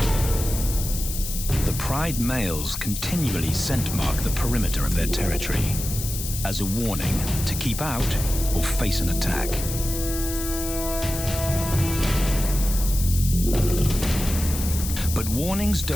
The pride males continually scent mark the perimeter of their territory as a warning to keep out or face an attack. But warnings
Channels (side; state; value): left; noise; hiss, 7 dB below the sound